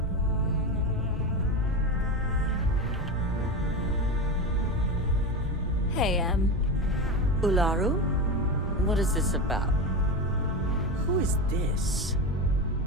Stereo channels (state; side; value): normal; both; correlation 0.20